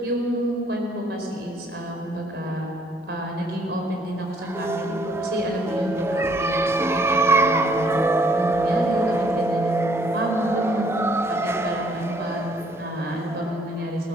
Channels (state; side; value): normal; both; correlation 0.64